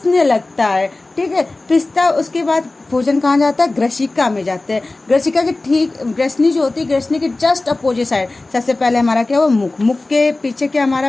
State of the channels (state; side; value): quieter; right; 3.1 dB